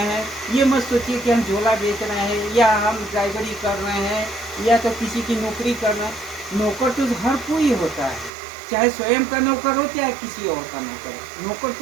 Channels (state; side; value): drops out; left; at 8.3 s